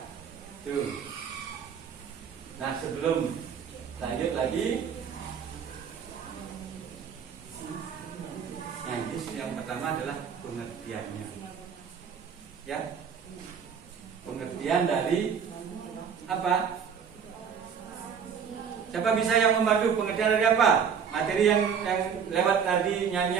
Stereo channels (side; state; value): left; quieter; 7.1 dB